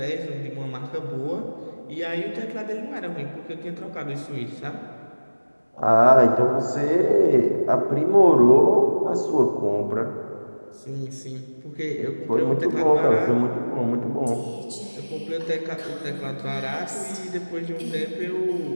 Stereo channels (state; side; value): inverted; both; correlation -1.00